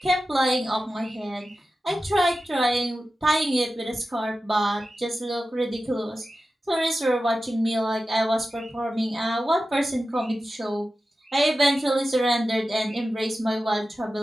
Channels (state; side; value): normal; both; correlation 0.93